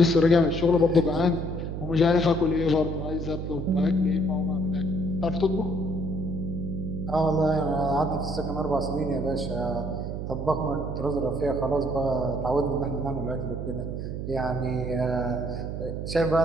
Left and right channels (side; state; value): right; noise; hum, 5 dB below the sound